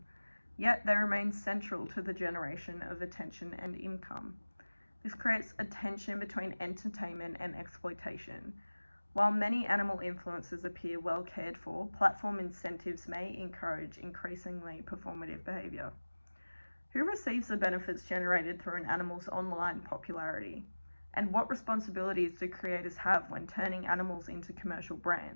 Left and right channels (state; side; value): inverted; both; correlation -1.00